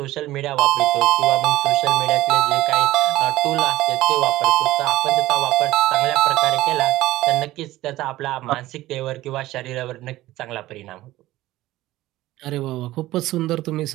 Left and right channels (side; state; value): left; quieter; 16.4 dB